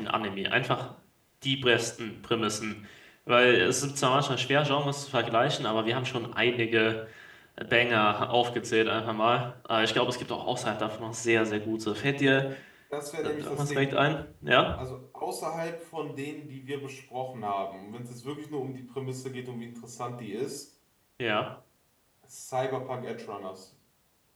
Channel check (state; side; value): identical; both; correlation 1.00